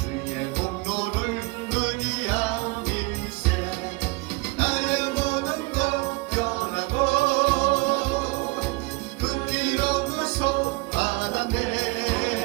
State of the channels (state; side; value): quieter; left; 25.9 dB